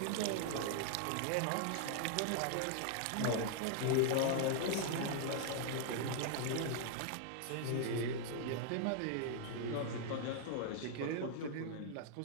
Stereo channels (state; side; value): different; both; correlation 0.00